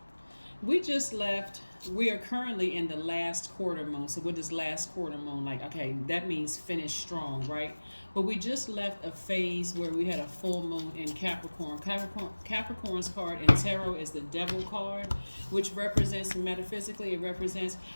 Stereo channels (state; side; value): inverted; both; correlation -1.00